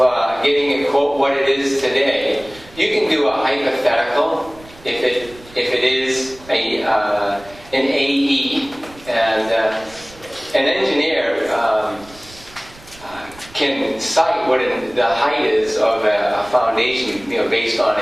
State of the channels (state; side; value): noise; right; rumble, 22 dB below the sound